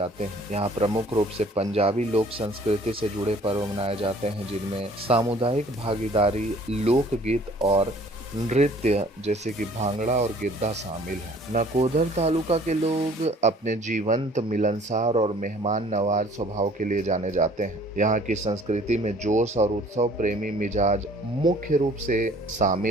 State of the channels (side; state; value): both; normal; correlation 0.54